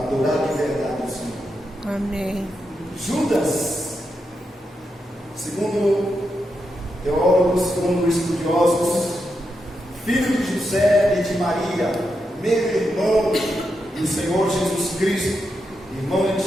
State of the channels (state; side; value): normal; both; correlation 0.85